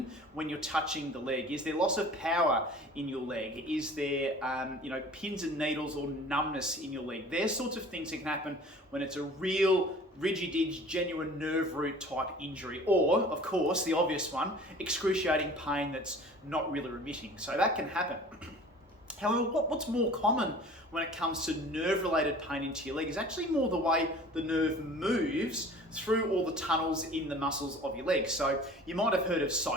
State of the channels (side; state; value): both; normal; correlation 0.45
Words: when you're touching the leg? Is there loss of power in your leg? Is there, pins and needles or numbness in your leg? There's sorts of things that can happen when it's a real rigid, genuine nerve root type injury, or, of course, the obvious one, excruciating pain that's not really remitting. So that can happen. However, what's more common when it comes to nerve-related pain into your leg is actually more the way the nerve moves through all the tunnels in the muscles of your leg. So you might have heard of